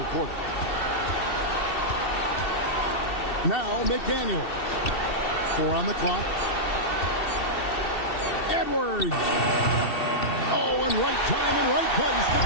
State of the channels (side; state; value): right; late; 2.7 ms